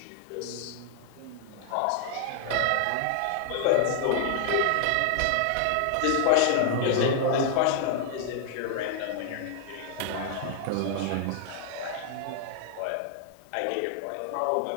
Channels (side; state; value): both; different; correlation 0.00